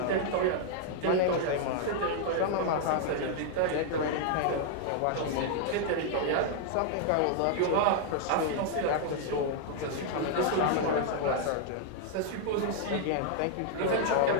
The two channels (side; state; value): both; different; correlation 0.00